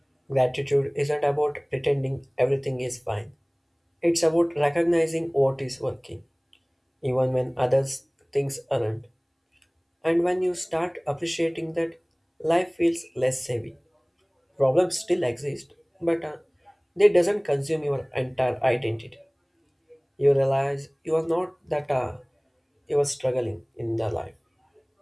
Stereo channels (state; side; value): identical; both; correlation 1.00